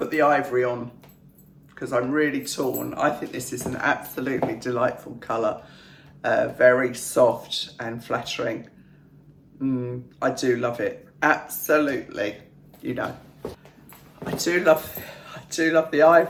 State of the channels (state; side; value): identical; both; correlation 1.00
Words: the ivory on because I'm really torn. I think this is an absolutely delightful colour. Very soft and flattering. I do love it. Absolutely. You know, I do love do love the